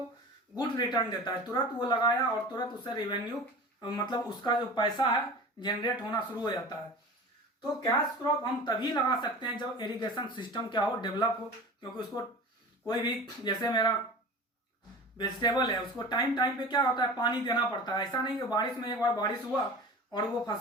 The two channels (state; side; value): normal; both; correlation 0.36